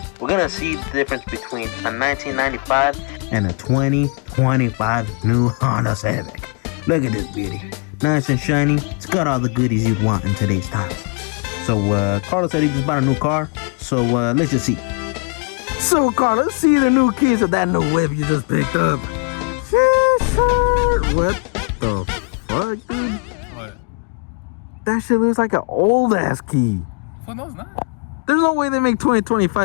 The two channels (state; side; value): quieter; right; 37.6 dB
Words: we're gonna see the difference between a 1995 and a 2025 new Honda Civic. Look at this beauty. Nice and shiny. It's got all the goodies you'd want in today's times. So Carlos said he just bought a new car, so let's just see. So Carlos, see the new keys of that new whip you just picked up. Sure. What the fuck, dude? What? That shit looks like an old ass key. Well, no, it's not. There's no way they make